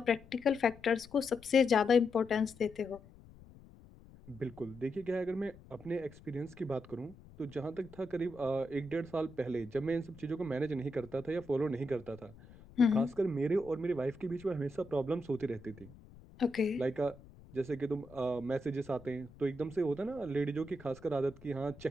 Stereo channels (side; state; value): left; noise; rumble, 21 dB below the sound